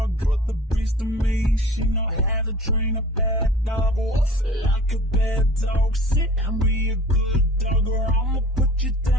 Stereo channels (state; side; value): normal; both; correlation 0.45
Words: Got the beast in me, she know how to train a bad dog. Like a bad dog, sit and be a good dog, or I'ma put you